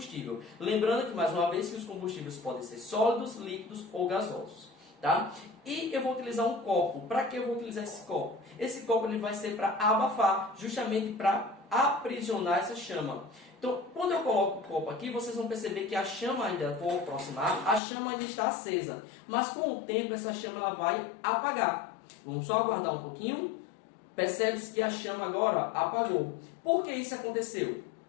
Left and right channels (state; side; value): drops out; right; at 17.8 s